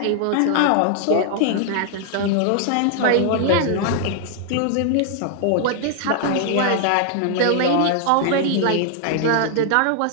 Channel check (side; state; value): both; different; correlation 0.00